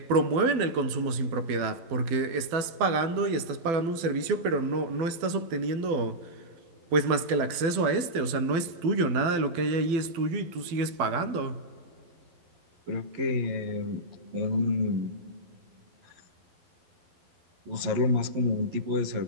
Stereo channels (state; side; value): late; left; 12 ms